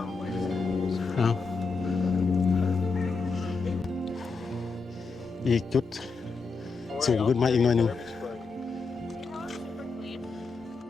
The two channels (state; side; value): quieter; right; 4.4 dB